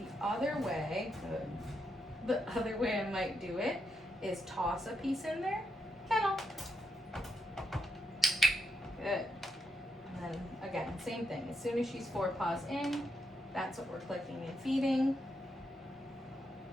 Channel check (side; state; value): both; normal; correlation 0.82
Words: other way I might do it is toss a piece in there. Kennel. Good. And then again, same thing. As soon as she's 4 paws in, that's what we're clicking and feeding.